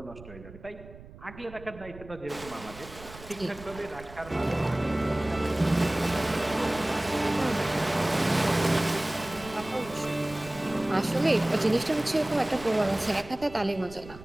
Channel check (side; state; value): right; noise; rumble, 17 dB below the sound